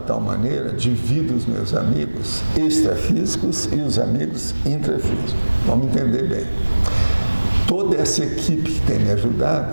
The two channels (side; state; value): both; inverted; correlation -1.00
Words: maneira, divido os meus amigos extrafísicos e os amigos intrafísicos. Vamos entender bem. Toda essa equipe que tem me